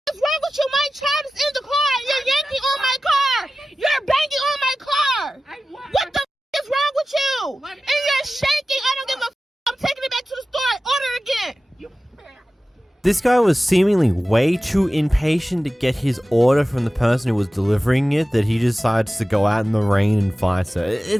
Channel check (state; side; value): normal; both; correlation 0.95